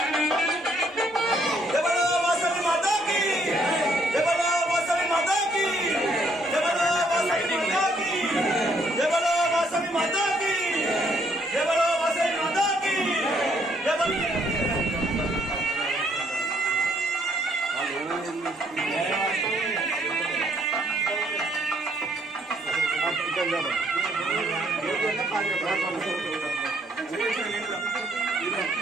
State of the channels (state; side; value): normal; both; correlation 0.69